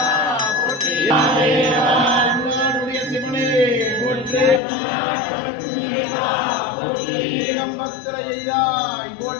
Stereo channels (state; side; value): drops out; right; at 4.6 s